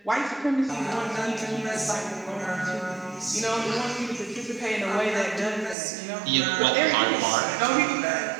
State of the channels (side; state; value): left; drops out; at 5.8 s